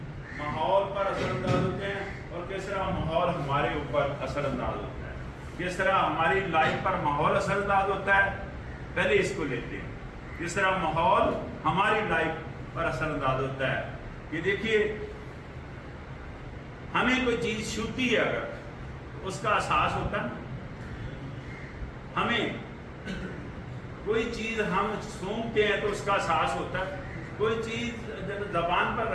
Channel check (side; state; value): both; identical; correlation 1.00